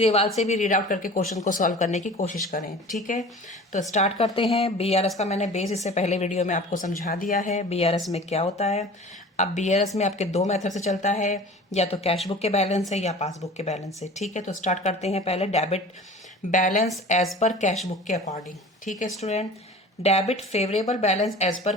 से भी रीड आउट करके क्वेश्चन को सॉल्व करने की कोशिश करें। ठीक है, तो स्टार्ट करते हैं। बीआरएस का मैंने बेस इससे पहले वीडियो में आपको समझा दिया है, बीआरएस में क्या होता है। अब बीआरएस में आपके दो मेथड से चलता है, या तो कैश बुक के बैलेंस है या पासबुक के बैलेंस है। ठीक है, तो स्टार्ट करते हैं पहले debit balance as per cash book के अकॉर्डिंग। ठीक है student, debit favourable balance as per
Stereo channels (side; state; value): both; normal; correlation 0.40